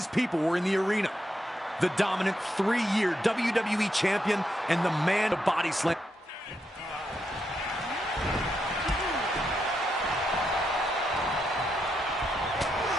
people were in the arena. The dominant 3-year WWE champion and the man of body slam.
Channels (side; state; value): both; normal; correlation 0.82